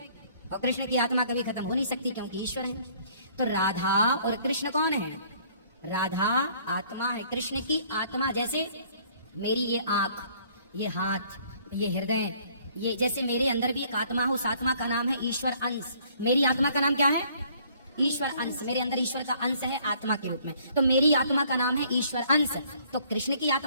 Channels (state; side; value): inverted; both; correlation -0.60